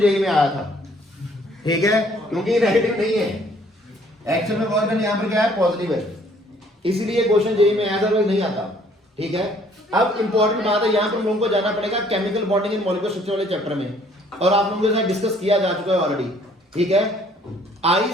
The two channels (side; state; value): both; normal; correlation 0.60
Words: में आया था। ठीक है, क्योंकि नेगेटिव नहीं है एक्चुअल में। वर्क डन यहाँ पर क्या है? पॉजिटिव है, इसलिए क्वेश्चन जेई में आया था, नहीं आता। ठीक है। अब इंपॉर्टेंट बात है, यहाँ पर हम लोगों को जाना पड़ेगा chemical bonding in molecular structure वाले चैप्टर में, और आप लोगों के साथ डिस्कस किया जा चुका है ऑलरेडी, ठीक है।